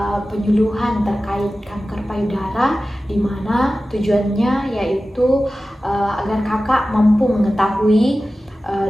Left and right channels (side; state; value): both; normal; correlation 0.95